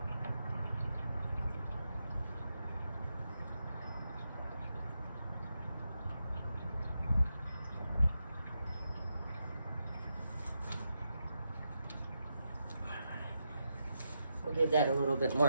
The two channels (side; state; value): both; inverted; correlation -0.85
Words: We'll give that a little bit